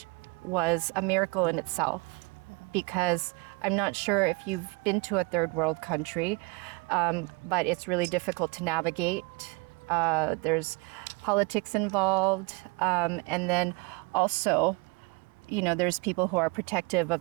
was a miracle in itself, because I'm not sure if you've been to a third world country, but it's really difficult to navigate. There's politics involved, and then also, there's people who are protective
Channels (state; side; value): quieter; left; 27.4 dB